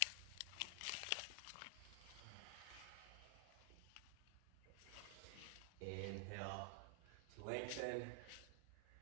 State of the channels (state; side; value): different; both; correlation 0.00